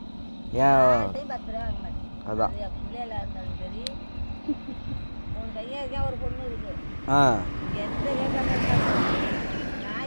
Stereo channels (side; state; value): both; inverted; correlation -1.00